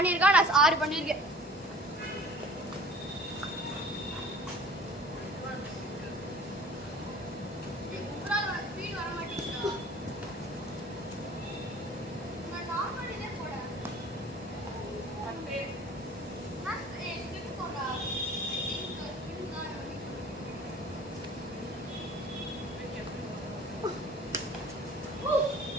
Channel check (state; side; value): normal; both; correlation 0.47